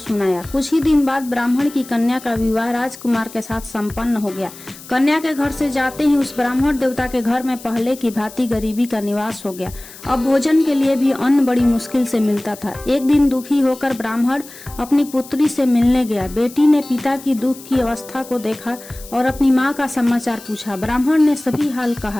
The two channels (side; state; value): left; noise; hiss, 18 dB below the sound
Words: कुछ ही दिन बाद ब्राह्मण की कन्या का विवाह राजकुमार के साथ संपन्न हो गया। कन्या के घर से जाते ही उस ब्राह्मण देवता के घर में पहले की भांति गरीबी का निवास हो गया। अब भोजन के लिए भी अन्न बड़ी मुश्किल से मिलता था। एक दिन दुखी होकर ब्राह्मण अपनी पुत्री से मिलने गया। बेटी ने पिता की दुख की अवस्था को देखा और अपनी माँ का समाचार पूछा। ब्राह्मण ने सभी हाल